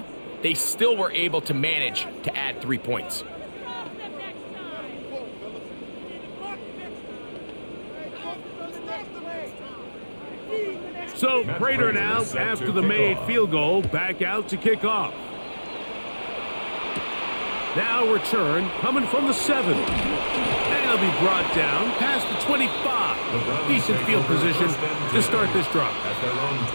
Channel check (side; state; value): both; inverted; correlation -1.00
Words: they still were able to manage to add 3 points. So Prater now, after the made field goal, back out to kick off. Now return coming from the 7. And he'll be brought down past the 25. Decent field position to start this drive.